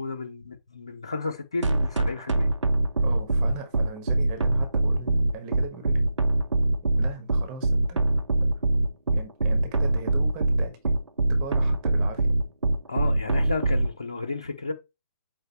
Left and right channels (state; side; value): inverted; both; correlation -0.90